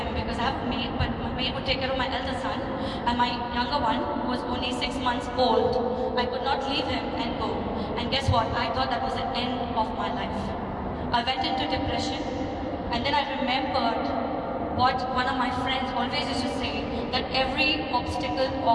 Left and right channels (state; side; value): identical; both; correlation 1.00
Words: because I have a maid, but my maid would take care of my elder son, and my younger one, who was only 6 months old, I could not leave him and go. And guess what? I thought that was the end of my life. I went into depression, and then I remembered what one of my friends always used to say, that every obstacle